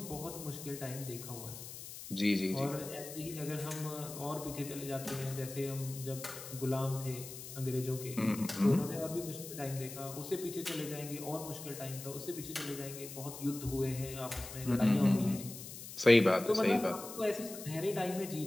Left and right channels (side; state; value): left; noise; hiss, 11 dB below the sound